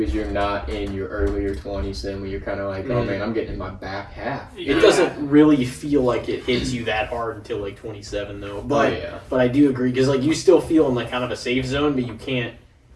you're not in your earlier 20s then when you're kind of like, oh man, I'm getting in my back half. It doesn't really feel like it hits you that hard until like 27 though. But yeah. but I do agree because like you still feel in like kind of a safe zone, but you can't.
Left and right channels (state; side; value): identical; both; correlation 1.00